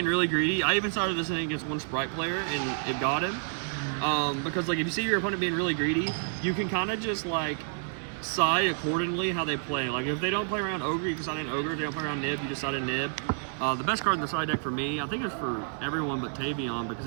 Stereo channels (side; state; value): left; silent; 55 dB below the other